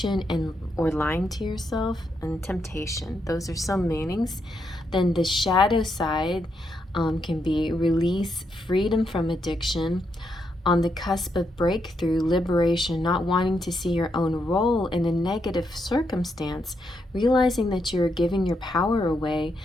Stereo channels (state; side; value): normal; both; correlation 0.80